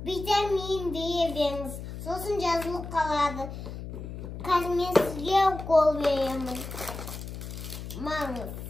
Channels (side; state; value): left; noise; hum, 9 dB below the sound